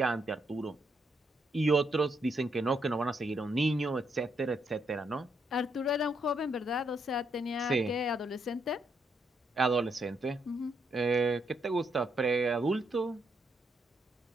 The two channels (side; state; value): both; normal; correlation 0.77